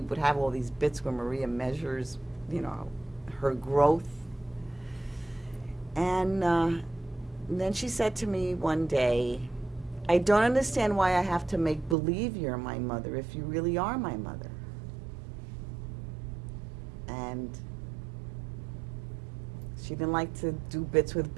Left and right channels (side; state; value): left; drops out; at 12.0 s